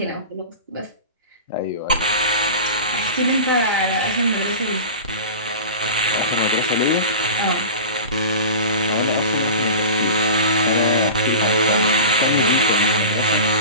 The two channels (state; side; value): inverted; both; correlation -0.33